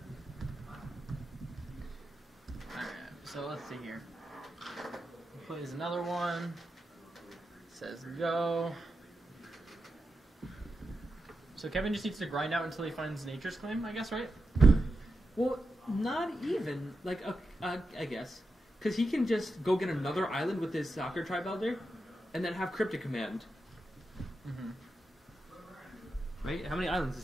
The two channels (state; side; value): normal; both; correlation 0.88